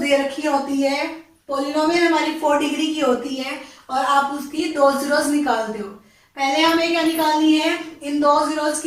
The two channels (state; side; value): identical; both; correlation 1.00